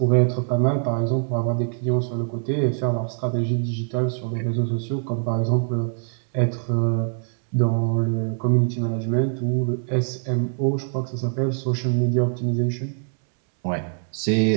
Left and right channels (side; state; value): left; silent; 63 dB below the other